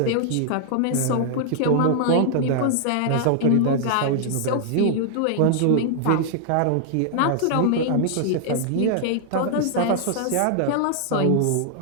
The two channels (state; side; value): different; both; correlation 0.00